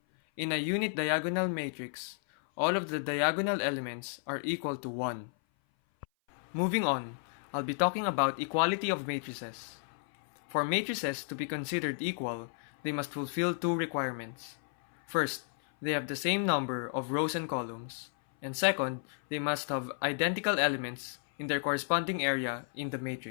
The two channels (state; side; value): silent; right; 56 dB below the other